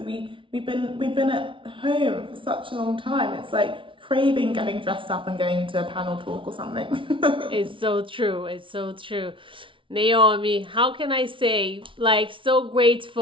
been at home for such a long time. It's like craving getting dressed up and going to a panel talk or something. It's so true. Naomi, how can I say, so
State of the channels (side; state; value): left; late; 0.25 ms